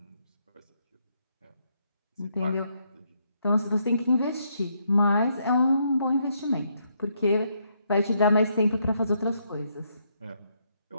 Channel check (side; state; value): both; inverted; correlation -0.75